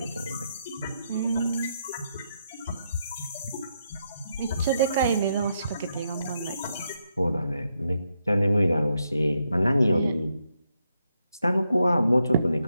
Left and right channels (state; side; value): inverted; both; correlation -0.80